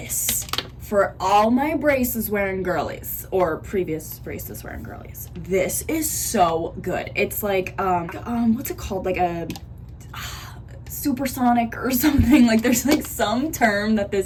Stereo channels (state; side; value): identical; both; correlation 1.00